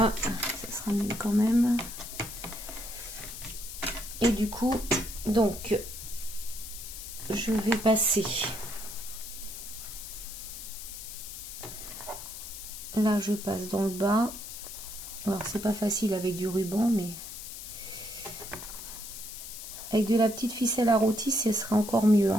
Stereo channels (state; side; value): noise; left; hiss, 10 dB below the sound